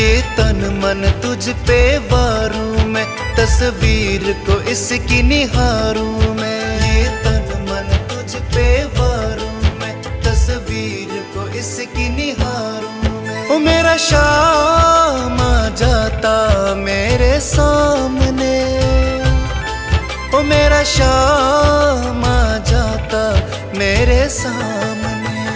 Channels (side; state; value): both; identical; correlation 1.00